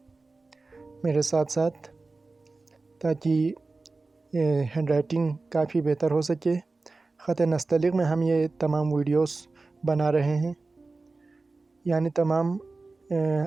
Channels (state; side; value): quieter; left; 3.6 dB